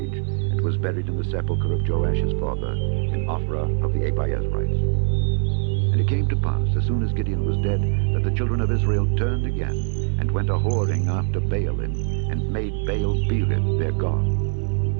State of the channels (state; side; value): silent; left; 59 dB below the other